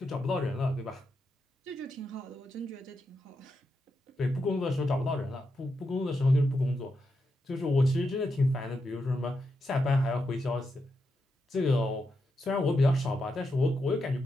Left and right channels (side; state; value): both; normal; correlation 0.85